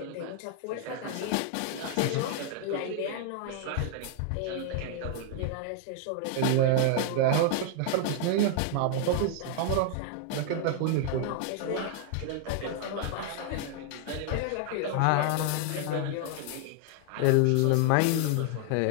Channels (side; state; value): both; different; correlation 0.00